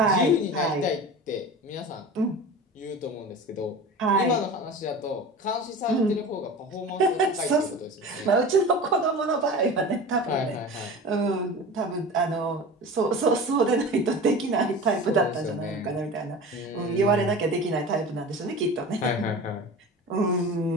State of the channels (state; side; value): normal; both; correlation 0.34